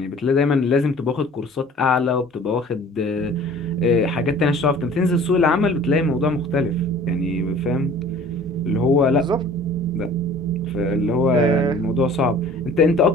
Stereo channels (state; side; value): normal; both; correlation 0.48